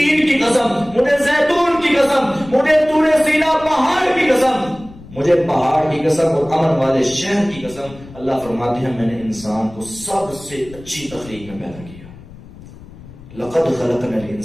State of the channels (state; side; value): noise; left; rumble, 19 dB below the sound